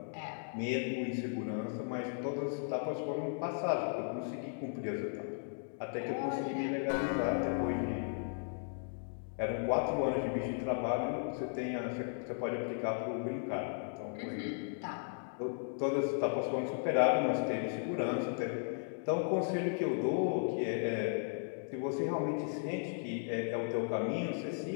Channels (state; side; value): silent; right; digital silence